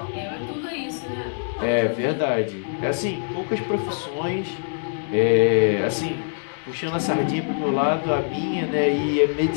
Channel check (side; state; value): right; silent; digital silence